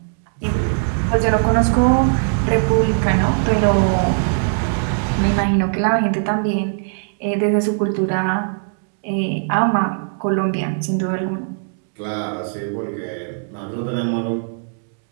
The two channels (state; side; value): silent; left; digital silence